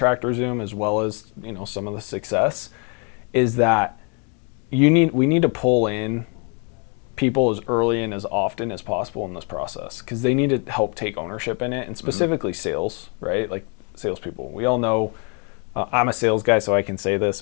Zoom, as well as some of the success, is that we need to pull in people as early and as often as possible in this process, because they need to help take ownership in it, and specifically sales, right? Like salespeople. We all know I'm a sales guy, so I can say this.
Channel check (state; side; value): quieter; right; 35.2 dB